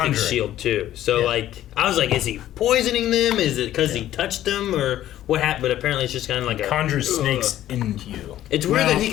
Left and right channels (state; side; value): quieter; right; 12.9 dB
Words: shield too. So like, I was like, is he poisoning them? Is it because he touched them or what happened? But apparently it's just kind of like conjures snakes into you. It's weird that he